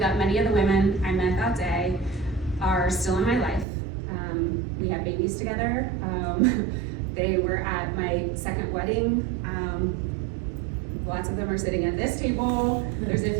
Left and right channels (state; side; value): drops out; left; at 3.7 s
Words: many of the women I met that day are still in my life. We had babies together. They were at my second wedding. Lots of them are sitting at this table. There's a